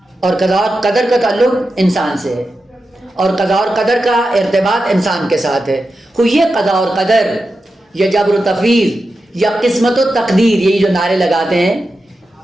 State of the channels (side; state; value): both; normal; correlation 0.90